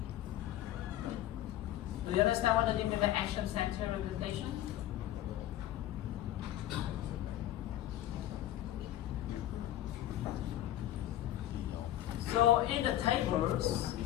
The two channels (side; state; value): right; quieter; 13.2 dB